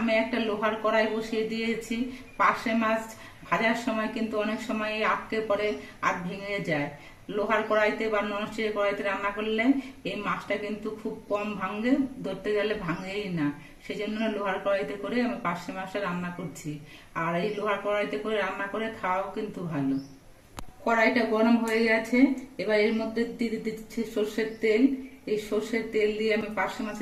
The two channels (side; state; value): both; identical; correlation 1.00